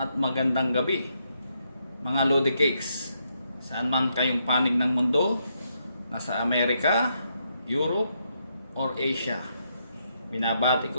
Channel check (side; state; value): both; inverted; correlation -0.78